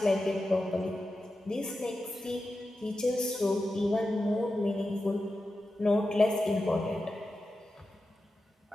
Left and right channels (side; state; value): both; normal; correlation 0.91